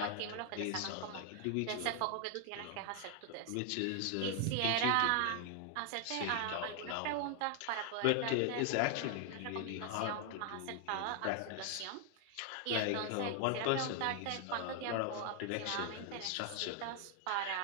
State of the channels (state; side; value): different; both; correlation 0.00